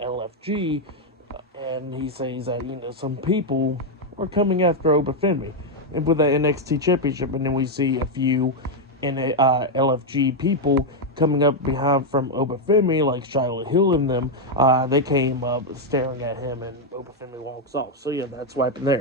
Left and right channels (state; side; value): normal; both; correlation 0.01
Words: And he says that, some people are coming after Obafemi. And with the NXT Championship, and then we see a few LFG people coming up behind from Obafemi, like Shiloh Hill and them. They came up staring at him, and Obafemi walks off. So yeah, that's what happened